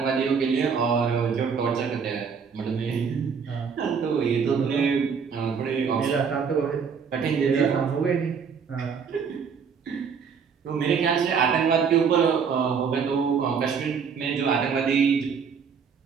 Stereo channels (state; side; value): quieter; left; 6.3 dB